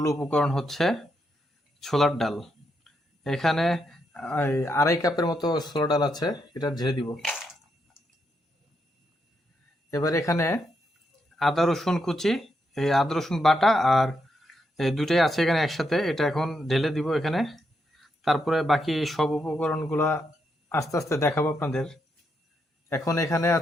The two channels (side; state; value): both; normal; correlation 0.81